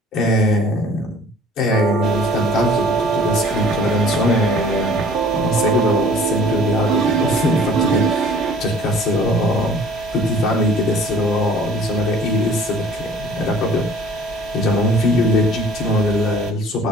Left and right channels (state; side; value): normal; both; correlation 0.51